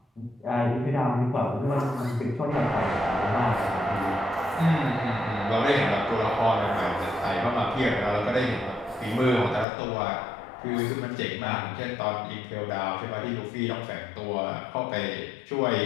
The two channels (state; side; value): drops out; right; at 9.7 s